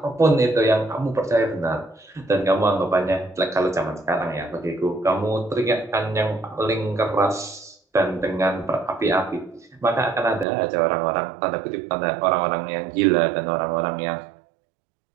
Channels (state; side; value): drops out; left; at 10.5 s